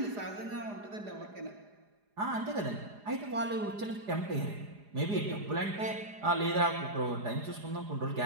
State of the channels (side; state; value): left; late; 4.9 ms